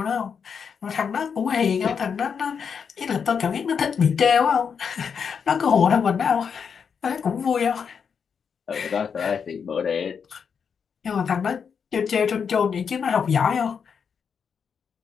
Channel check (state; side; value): quieter; right; 6.6 dB